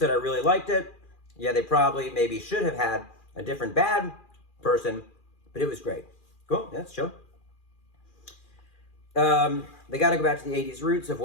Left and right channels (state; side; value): late; right; 2.4 ms